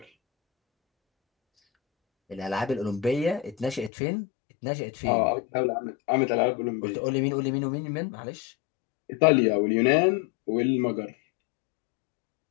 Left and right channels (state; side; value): drops out; right; at 3.9 s